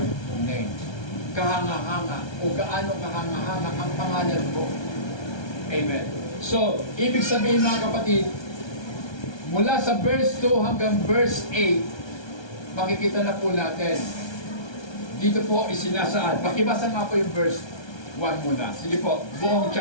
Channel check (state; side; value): late; right; 1.3 ms